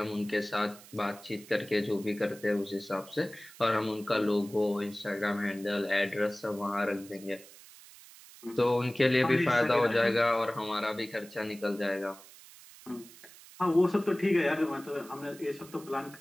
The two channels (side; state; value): right; noise; hiss, 20 dB below the sound